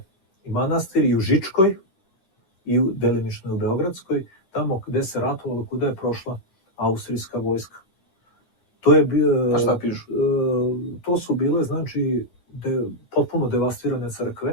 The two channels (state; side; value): late; right; 10 ms